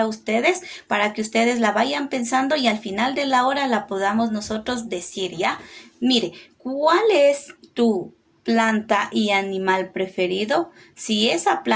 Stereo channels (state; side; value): identical; both; correlation 1.00